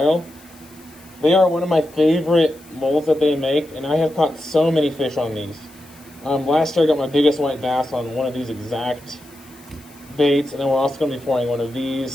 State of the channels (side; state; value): left; noise; hiss, 25 dB below the sound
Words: They are one of my favorite molds that they make, and I have caught so many fish on these. Last year I got my biggest white bass on one of these exact baits, and then we're also going to be pouring one of